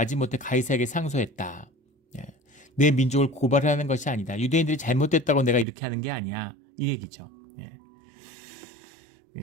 가이사에게 상소했다. 내 민족을 고발하는 것이 아니다. 유대인들이 잘못됐다고 내가 이렇게 하는 게 아니야. 이 얘기죠.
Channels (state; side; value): drops out; left; at 5.7 s